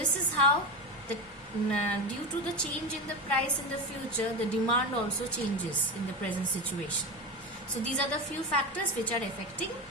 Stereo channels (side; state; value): both; normal; correlation 0.20